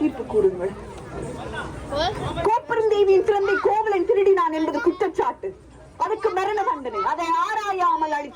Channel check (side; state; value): both; identical; correlation 1.00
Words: தீர்ப்பு கூறுங்கள். கோப்பெருந்தேவியின் சிறந்தை கோவலன் திருடினான் என்பது குற்றச்சாட்டு. அதுக்கு மரண தண்டனை. அதை ஆராயாமல்